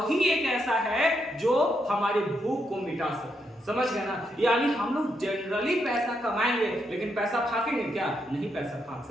एक ऐसा है जो हमारी भूख को मिटा सकता है। समझ गए ना? यानी हम लोग जनरली पैसा कमाएंगे लेकिन पैसा फाकेंगे क्या? नहीं पैसा फाक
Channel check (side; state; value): both; normal; correlation 0.80